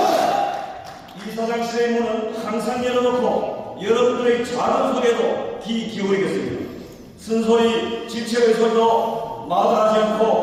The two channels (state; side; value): identical; both; correlation 1.00